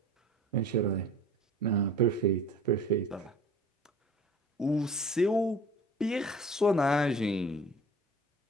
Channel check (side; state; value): both; normal; correlation 0.44